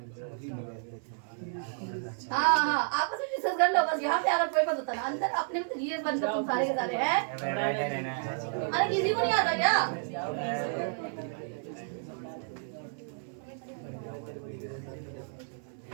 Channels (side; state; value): left; silent; 57 dB below the other